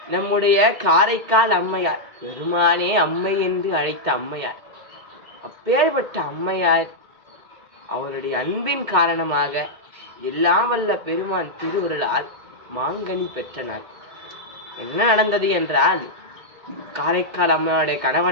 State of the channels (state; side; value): late; left; 2.1 ms